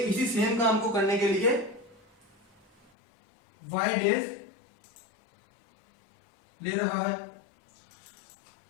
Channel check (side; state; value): right; drops out; at 2.9 s